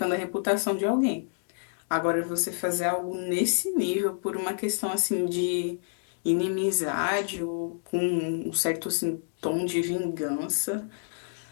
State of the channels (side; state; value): right; silent; digital silence